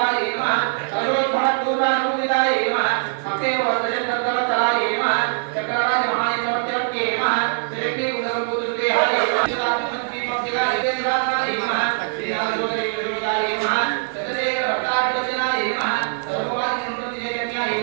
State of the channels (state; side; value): silent; left; digital silence